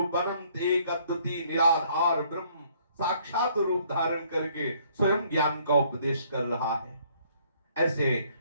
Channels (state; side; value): inverted; both; correlation -0.63